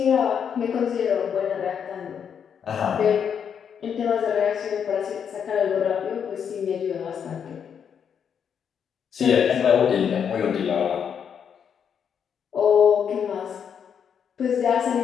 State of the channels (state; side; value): quieter; right; 7.6 dB